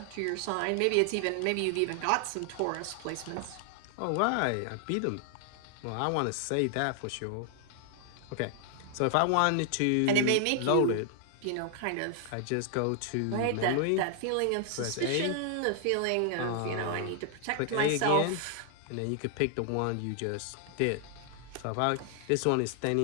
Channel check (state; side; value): different; both; correlation 0.00